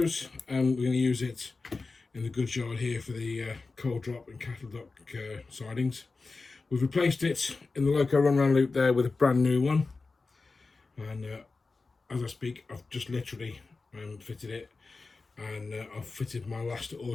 and we're going to use it in the goods yard here for the coal drop and cattle dock sidings. We've replaced it in the loco run round loop there with a brand new one, and as I speak I've just literally fitted it, and I've fitted my last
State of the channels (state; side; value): quieter; right; 3.9 dB